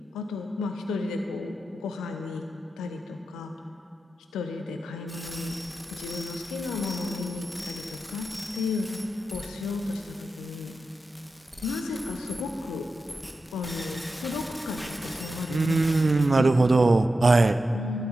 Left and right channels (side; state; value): both; normal; correlation 0.91